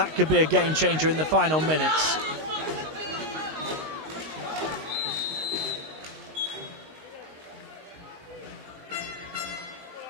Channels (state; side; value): late; left; 19 ms